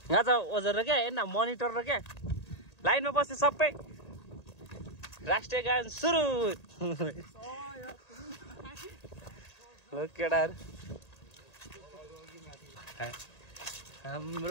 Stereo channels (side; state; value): right; late; 1.8 ms